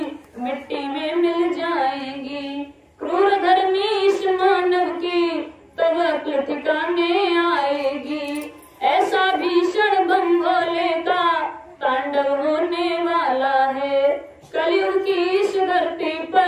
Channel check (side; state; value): both; identical; correlation 1.00